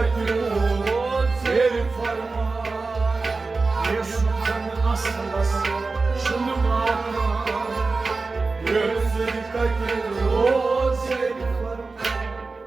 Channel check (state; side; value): quieter; left; 3.9 dB